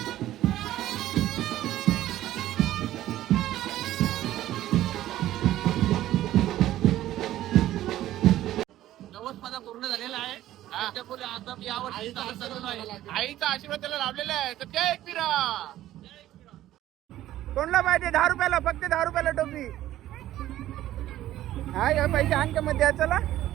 माझा पूर्ण झालेला आहे. आता मी आईचा आशीर्वाद त्याला लाभलेला आहे तर त्या एकविरा कोणला पाहिजे? 10 रुपयाला, फक्त 10 रुपयाला टोपी. हा या पैसे आणखी मध्ये चला.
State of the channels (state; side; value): quieter; left; 13.9 dB